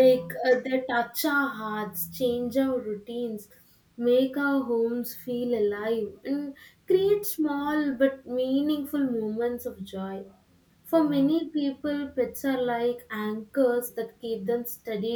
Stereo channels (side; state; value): both; identical; correlation 1.00